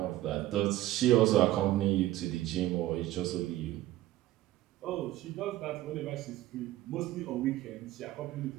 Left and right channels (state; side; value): quieter; left; 15.4 dB